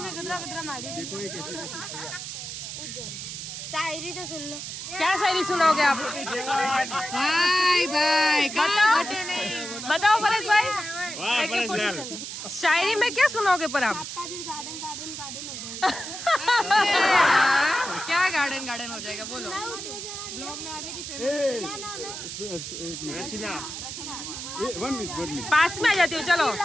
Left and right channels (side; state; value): right; noise; hiss, 8 dB below the sound